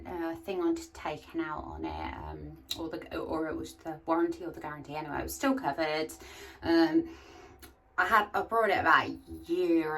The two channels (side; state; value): both; identical; correlation 1.00